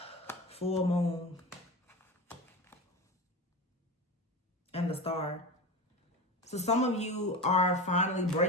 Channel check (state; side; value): normal; both; correlation 0.26